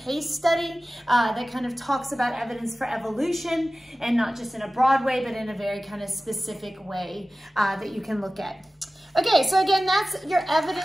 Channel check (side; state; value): both; normal; correlation 0.96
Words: study that kind of talks about evidence for evolution, and not just in a broad way, but in a very kind of specific way that you can look at. Okay, so again, that's your